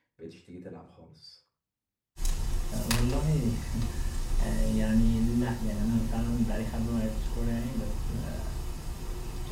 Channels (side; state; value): both; identical; correlation 1.00